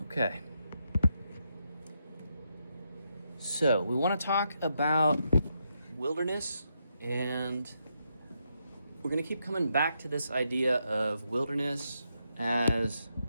Okay. So we want to talk about wilderness, and we're going to keep coming back to this idea of wilderness as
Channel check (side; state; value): both; inverted; correlation -0.81